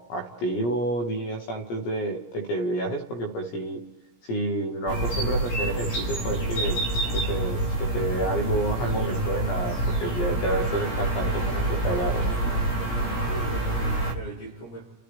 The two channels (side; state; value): right; late; 17 ms